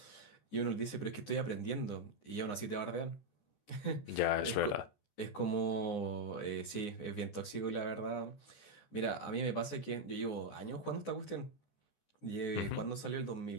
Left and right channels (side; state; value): right; late; 14 ms